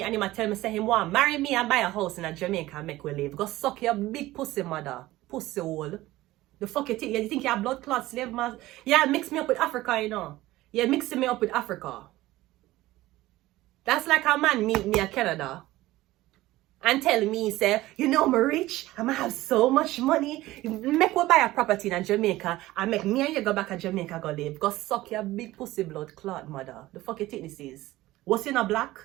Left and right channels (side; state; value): left; quieter; 17.2 dB